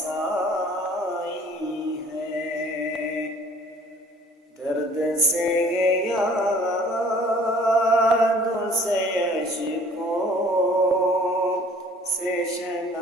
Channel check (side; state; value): both; normal; correlation 0.54